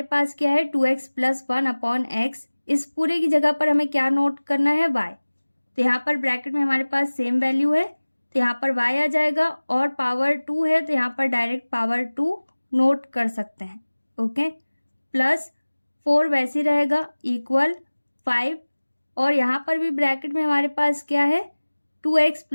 पास क्या है 2x + 1 अपॉन x, इस पूरे की जगह पर हमें क्या नोट करना है y, तो यहाँ पर ब्रैकेट में हमारे पास सेम वैल्यू है तो यहाँ पर y आ जाएगा और पावर 2 है तो यहाँ पर डायरेक्ट पावर 2 नोट कर सकते हैं। ओके, +4 वैसे ही रहेगा इक्वल 5 और यहाँ पर भी ब्रैकेट में हमारे पास क्या है 2x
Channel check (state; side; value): inverted; both; correlation -1.00